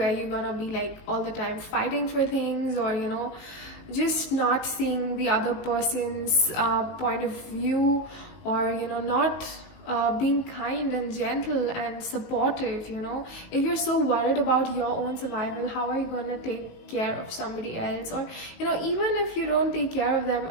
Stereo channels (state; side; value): late; right; 19 ms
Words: you're gonna be like all the time fighting for things, or just not seeing the other person's point of view, or not being kind and gentle and supportive. If you're so worried about your own survival, how are you going to take care of somebody else? Or even if you don't take care of them,